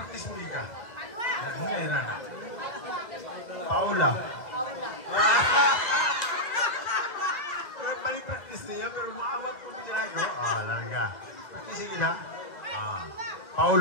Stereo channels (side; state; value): right; late; 2.0 ms